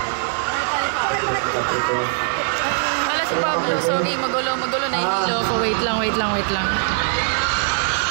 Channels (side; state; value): left; silent; 65 dB below the other